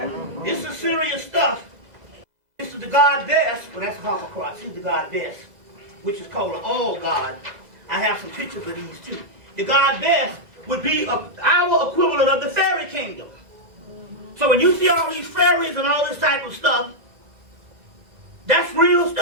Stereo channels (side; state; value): left; late; 2.0 ms